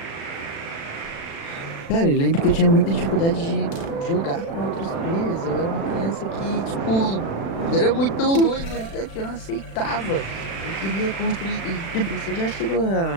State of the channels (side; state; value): right; late; 36 ms